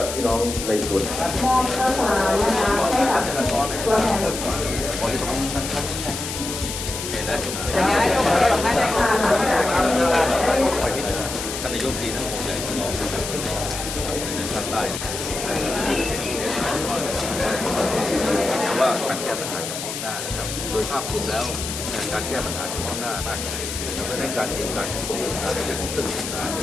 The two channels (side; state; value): left; noise; hiss, 6 dB below the sound